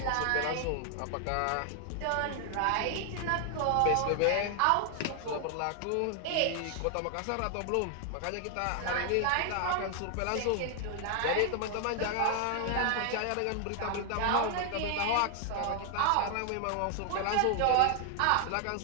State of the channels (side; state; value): both; different; correlation 0.00